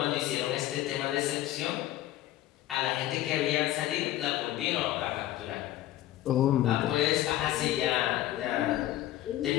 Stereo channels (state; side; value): quieter; right; 14.3 dB